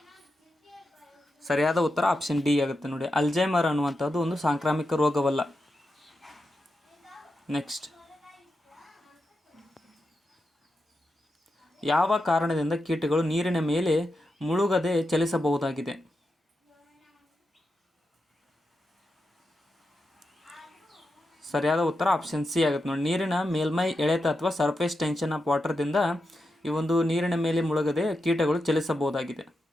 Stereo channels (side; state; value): both; normal; correlation 0.88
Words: ಸರಿಯಾದ ಉತ್ತರ ಆಪ್ಷನ್ ಡಿ ಆಗುತ್ತೆ ನೋಡಿ. ಅಲ್ಝೈಮರ್ ಅನ್ನುವಂಥದ್ದು ಒಂದು ಸಾಂಕ್ರಾಮಿಕ ರೋಗವಲ್ಲ. ನೆಕ್ಸ್ಟ್, ಯಾವ ಕಾರಣದಿಂದ ಕೀಟಗಳು ನೀರಿನ ಮೇಲೆ ಮುಳುಗದೆ ಚಲಿಸಬಹುದಾಗಿದೆ? ಸರಿಯಾದ ಉತ್ತರ ಆಪ್ಷನ್ ಸಿ ಆಗುತ್ತೆ ನೋಡಿ. ನೀರಿನ ಮೇಲ್ಮೈ ಎಳೆತ ಅಥವಾ ಸರ್ಫೇಸ್ ಟೆನ್ಷನ್ ಆಫ್ ವಾಟರ್ದಿಂದ ಈ ಒಂದು ನೀರಿನ ಮೇಲೆ ಮುಳುಗದೆ ಕೀಟಗಳು ಚಲಿಸಬಹುದಾಗಿದೆ.